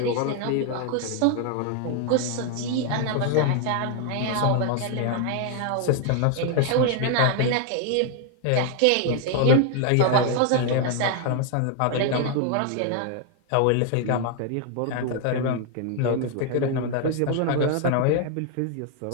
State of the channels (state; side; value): different; both; correlation 0.00